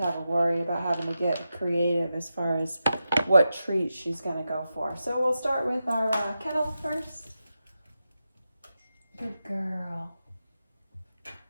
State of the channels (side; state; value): both; inverted; correlation -0.90